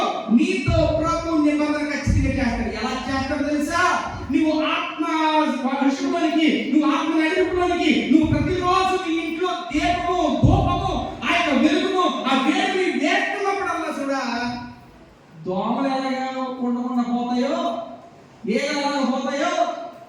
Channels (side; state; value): both; identical; correlation 1.00